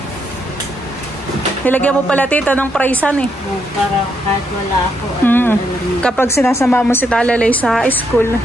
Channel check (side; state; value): both; normal; correlation 0.77